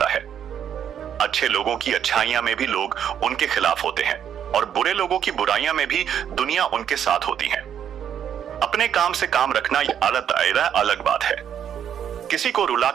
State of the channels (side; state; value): left; quieter; 9.1 dB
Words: है। अच्छे लोगों की अच्छाइयां में भी लोग उनके खिलाफ होते हैं, और बुरे लोगों की बुराइयां में भी दुनिया उनके साथ होती है। अपने काम से काम रखना अलग दायरा, अलग बात है। किसी को